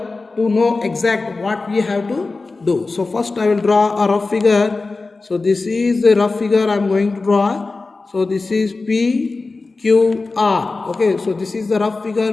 to know exact what we have to do. So first I will draw a rough figure. So this is the rough figure I am going to draw. So this is PQR. Okay, so this is the rough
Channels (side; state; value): right; quieter; 3.7 dB